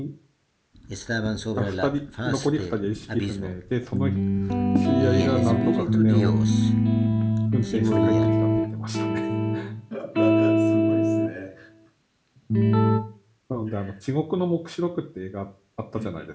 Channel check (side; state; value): both; identical; correlation 1.00